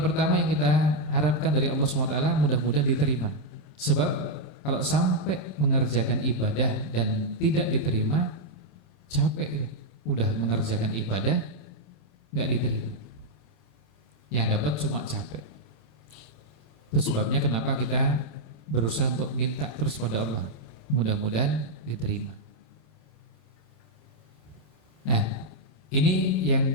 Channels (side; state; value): right; late; 27 ms